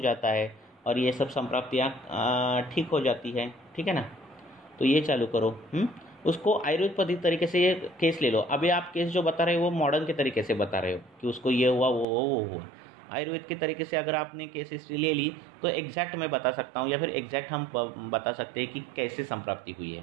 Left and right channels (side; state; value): left; drops out; at 12.1 s